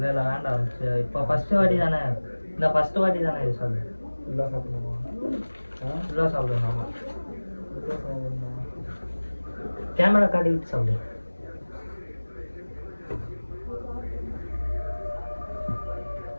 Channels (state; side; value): inverted; both; correlation -1.00